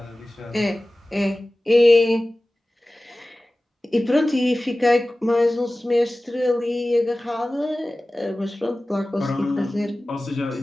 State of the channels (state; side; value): normal; both; correlation 0.97